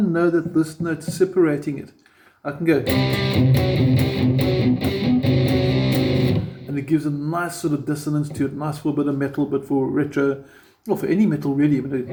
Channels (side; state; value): both; identical; correlation 1.00